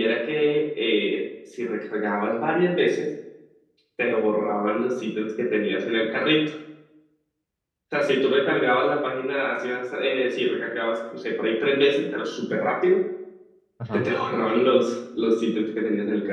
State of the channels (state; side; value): identical; both; correlation 1.00